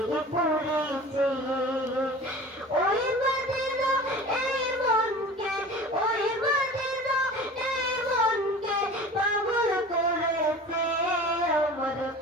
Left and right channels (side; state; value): both; normal; correlation 0.39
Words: পড়েছে ওই মদিনা এই মনকে ওই মদিনা এই মনকে পাগল করেছে আমার